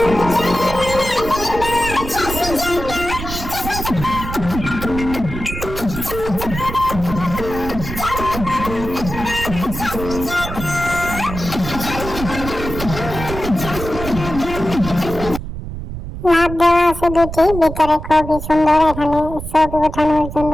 লাভ দেওয়া আছে দুটি, ভিতরে খুবই সুন্দর। এখানে ছবি ওঠানোর জন্য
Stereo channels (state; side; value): noise; right; rumble, 8 dB below the sound